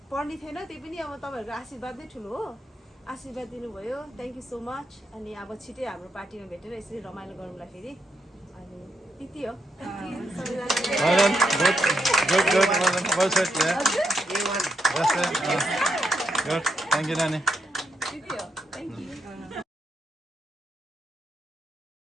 पढ्ने थिएन त्यही पनि अब तपाईँहरूको आशीर्वाद नै ठुलो हो आशीर्वाद दिनुभयो थ्याङ्क यू सो मच अनि अब छिटै हाम्रो पार्टीमा भेटेर यसरी रमाइलो गरौँला फेरि अनि त्यति हो थ्याङ्क यू नानी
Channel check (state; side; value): normal; both; correlation 0.80